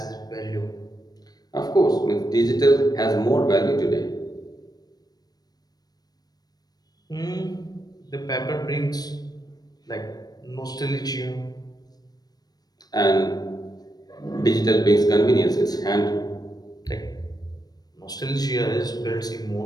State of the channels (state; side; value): late; right; 0.19 ms